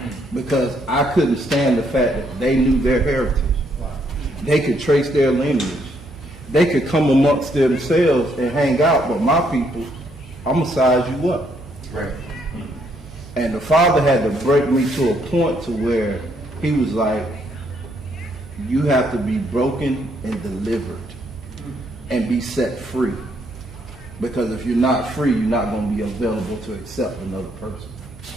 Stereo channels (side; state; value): right; noise; hum, 19 dB below the sound